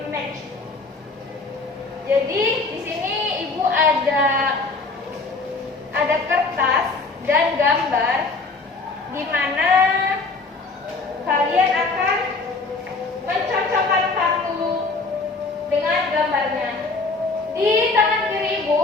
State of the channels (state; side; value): quieter; right; 3.8 dB